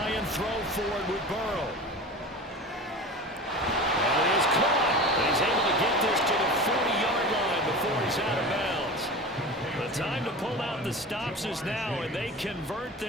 and throw forward with Burrow. And it is caught. And he's able to get this to the 40-yard line before he's out of bounds. The time to pull out the stops is now, and they convert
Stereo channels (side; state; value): both; normal; correlation 0.33